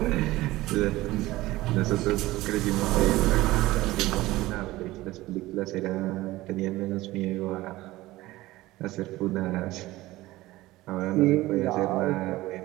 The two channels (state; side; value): quieter; left; 17.9 dB